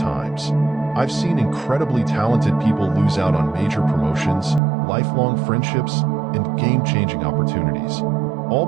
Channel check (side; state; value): left; drops out; at 4.6 s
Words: I've seen incredibly talented people lose out on major promotions, lifelong friendships, and game-changing opportunities, all